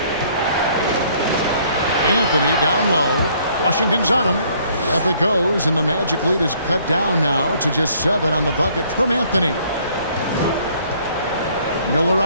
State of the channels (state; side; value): inverted; both; correlation -0.62